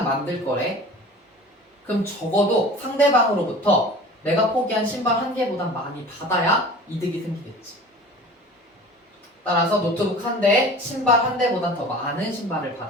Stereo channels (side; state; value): both; normal; correlation 0.41